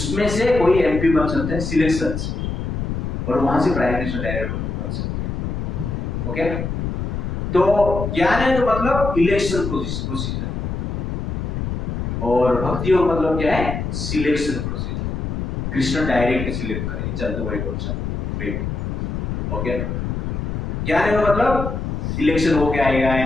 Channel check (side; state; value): left; noise; rumble, 3 dB below the sound